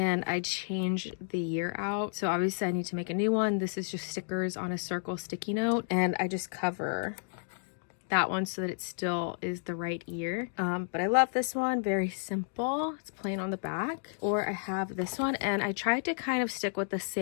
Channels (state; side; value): silent; right; digital silence